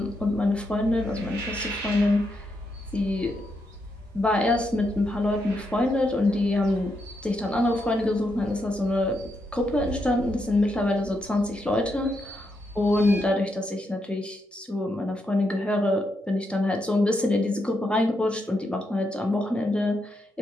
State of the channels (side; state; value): both; normal; correlation 0.81